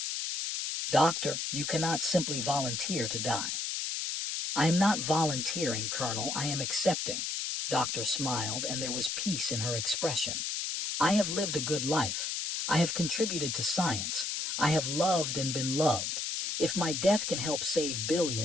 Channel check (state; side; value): noise; left; hiss, 2 dB below the sound